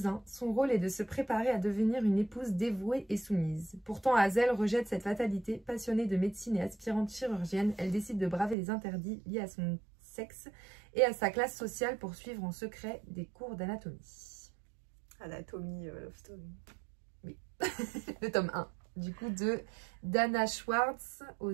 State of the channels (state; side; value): drops out; left; at 8.6 s